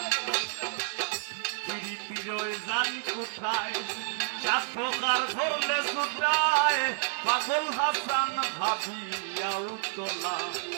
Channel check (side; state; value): left; silent; digital silence